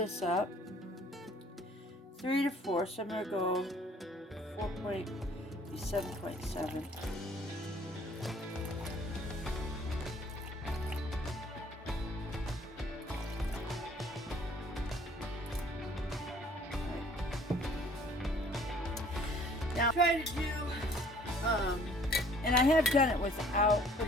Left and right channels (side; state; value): both; normal; correlation 0.56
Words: up, 3 to 4, so I'm going to go 7.7. Now try to do, and I have done it without